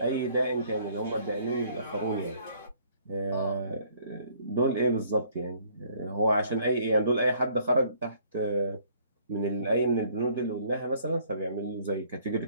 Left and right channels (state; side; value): inverted; both; correlation -0.61